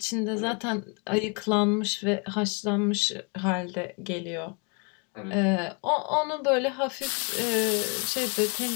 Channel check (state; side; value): quieter; right; 33.9 dB